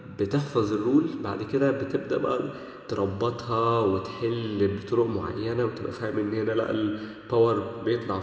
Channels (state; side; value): identical; both; correlation 1.00